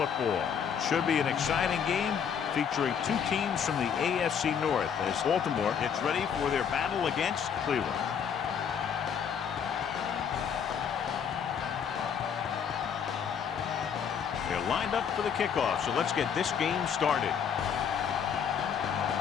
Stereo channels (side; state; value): right; quieter; 7.5 dB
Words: Should be an exciting game featuring two teams from the AFC North as Baltimore gets ready for their battle against Cleveland. They're lined up for the kickoff, so let's get this game started.